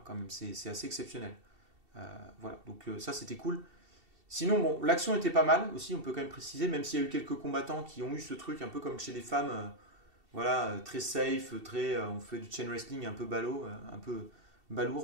quand même, c'est assez exceptionnel. Voilà, donc ça c'était cool. Sinon, bon, l'action était pas mal aussi, on peut quand même préciser, même s'il y a eu quelques combattants qui ont eu ce truc un peu comme chez les femmes, voilà, très safe, on fait du chain wrestling un peu ballot, un peu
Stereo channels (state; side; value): late; left; 2.7 ms